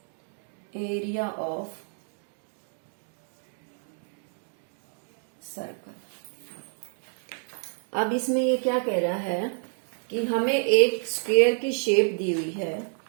area of circle. अब इसमें ये क्या कह रहा है कि हमें एक स्क्वायर की शेप दी हुई है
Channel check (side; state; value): left; silent; 56 dB below the other